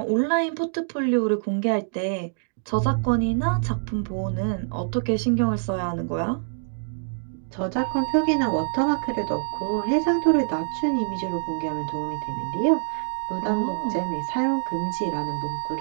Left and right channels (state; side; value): silent; left; digital silence